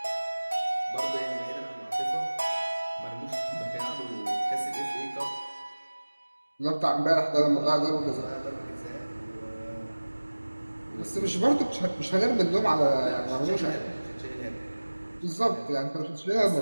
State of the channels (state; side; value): inverted; both; correlation -1.00